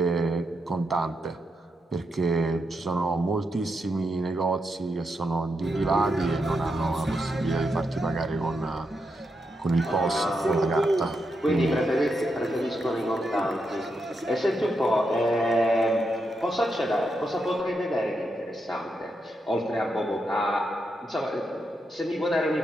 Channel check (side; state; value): both; normal; correlation 0.84